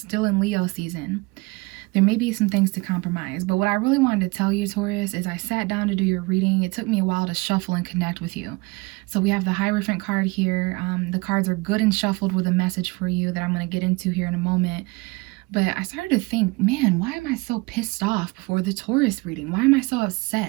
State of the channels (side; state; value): left; quieter; 25.1 dB